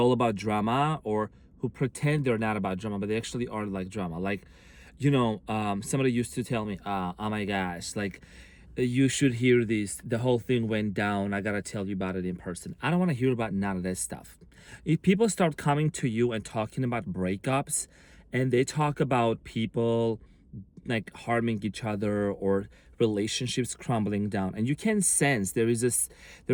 about drama, or who pretend they're not about drama, but they actually are like drama. Like, somebody used to tell me, oh my gosh, like, you should hear this. The whole thing went down. I gotta tell you about it in person. I don't want to hear about none of that stuff. If people start coming to you and talking about breakups, and they talk about people like harming each other, or relationships crumbling down, and you can sense there is a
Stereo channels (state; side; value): identical; both; correlation 1.00